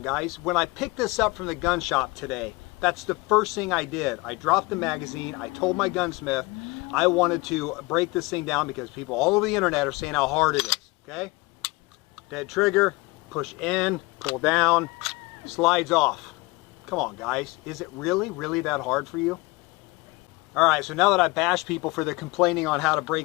guys. When I picked this up from the gun shop today, that's the first thing I did. I dropped the magazine, I told my gunsmith I wanted to break this thing down because people all over the internet are saying how hard it is, okay? Dead trigger, push in, pull down, slides off. Come on, guys. Is it really that hard for you? All right, so now that I bash people for their complaining on how to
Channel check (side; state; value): right; quieter; 23.8 dB